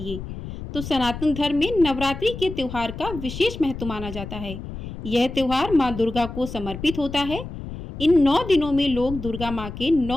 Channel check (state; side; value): noise; left; rumble, 10 dB below the sound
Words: तो सनातन धर्म में नवरात्रि के त्योहार का विशेष महत्व माना जाता है। यह त्योहार माँ दुर्गा को समर्पित होता है। इन 9 दिनों में लोग दुर्गा माँ के